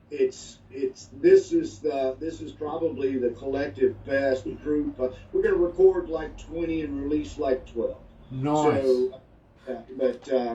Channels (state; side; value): identical; both; correlation 1.00